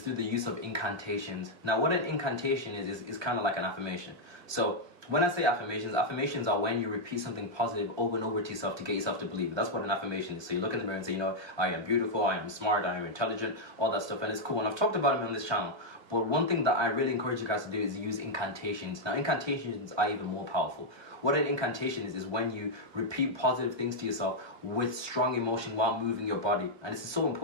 through the use of incantations. Now, what an incantation is kind of like an affirmation. So when I say affirmations are when you repeat something positive over and over to yourself to get yourself to believe. That's what an affirmation is. So you look in the mirror and say, you know, I am beautiful, I am smart, I am intelligent, all that stuff, and it's cool. And I've talked about them on this channel. But one thing that I really encourage you guys to do is use incantations. Now, incantations are even more powerful. What an incantation is when you repeat positive things to yourself with strong emotion while moving your body. And it's so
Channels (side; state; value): left; late; 1.2 ms